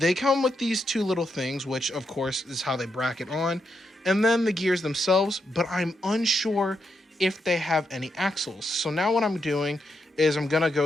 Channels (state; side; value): normal; both; correlation 0.82